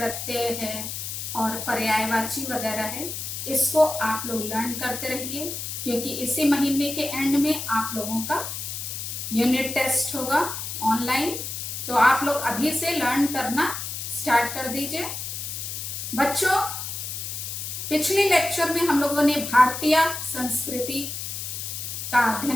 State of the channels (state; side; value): noise; left; hiss, 6 dB below the sound